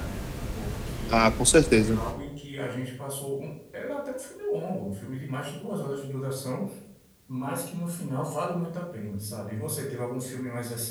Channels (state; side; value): identical; both; correlation 1.00